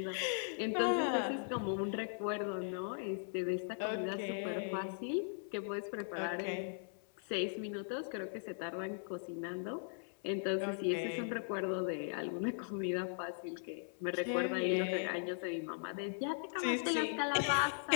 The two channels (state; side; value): silent; right; 52 dB below the other